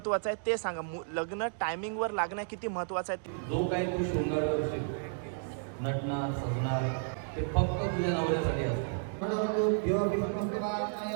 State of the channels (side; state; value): left; silent; digital silence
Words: आहे ते सांगा. लग्न टायमिंगवर लागणं किती महत्वाचं आहे. जो काही तू शृंगार करशील, नटणार सजणार, ते फक्त तुझ्या नवऱ्यासाठी असतं.